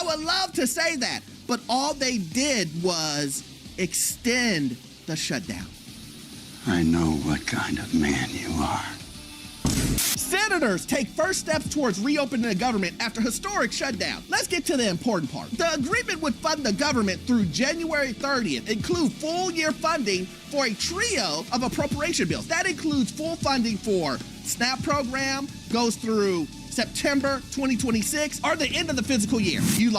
would love to say that, but all they did was extend the shutdown. I know what kind of man you are. Senators take first steps towards reopening the government after historic shutdown. Let's get to the important part. The agreement would fund the government through January 30th, include full year funding for a trio of appropriation bills. That includes full funding for SNAP program, goes through September 2026, or the end of the fiscal year. You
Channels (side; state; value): both; identical; correlation 1.00